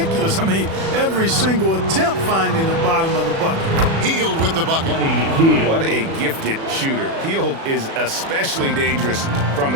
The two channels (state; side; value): late; left; 36 ms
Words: I mean, every single attempt finding the bottom of the bucket. Hield with the bucket. What a gifted shooter. Hield is especially dangerous from